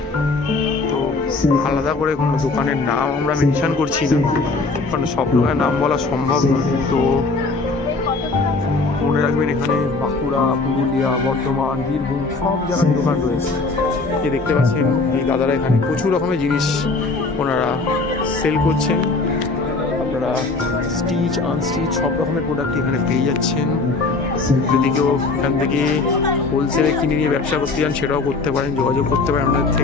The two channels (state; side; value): quieter; right; 3.7 dB